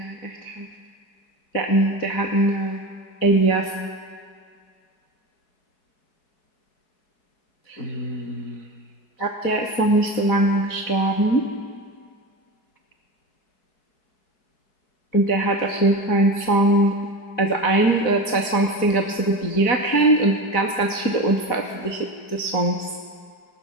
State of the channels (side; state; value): right; late; 4.7 ms